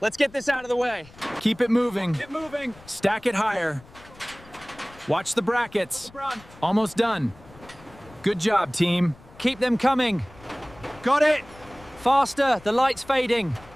get this out of the way. Keep it moving. Keep moving. Stack it higher. Watch the brackets. Almost done. Good job, team. Keep them coming. Got it. Faster, the light's fading.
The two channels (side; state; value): left; noise; rumble, 23 dB below the sound